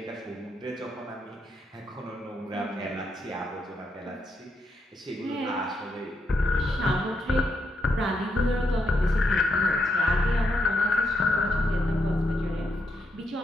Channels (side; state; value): both; normal; correlation 0.80